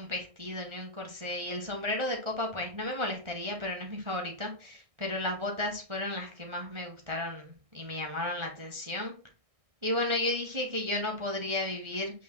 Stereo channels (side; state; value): left; late; 1.6 ms